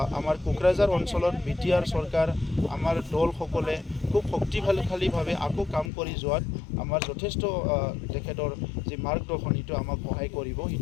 আমাৰ কোকৰাঝাৰ অঞ্চলত BTR চৰকাৰ আমাৰ দলসকলে খুব শক্তিশালীভাৱে আকৌ কাম কৰি যোৱাত আমাৰ যথেষ্ট তেখেতৰ যি মাৰ্গদৰ্শন সেইটো আমাক সহায় কৰিব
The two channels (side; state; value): right; drops out; at 5.9 s